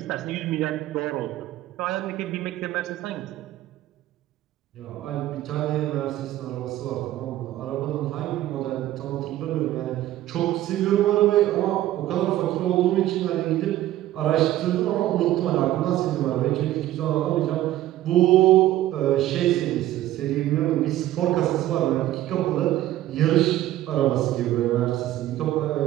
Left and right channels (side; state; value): left; quieter; 14.2 dB